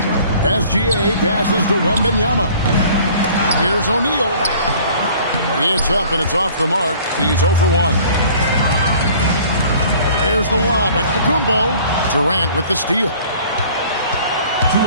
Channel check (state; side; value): inverted; both; correlation -0.51